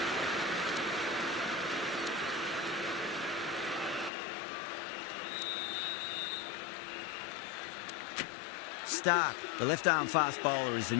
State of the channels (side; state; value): right; drops out; at 4.1 s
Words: Stark, the left-arm fast bowler, is the